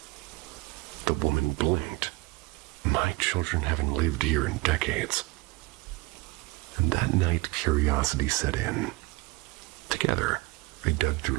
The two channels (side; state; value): left; quieter; 23.3 dB